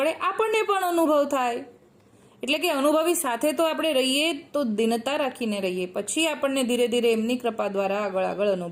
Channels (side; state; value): both; identical; correlation 1.00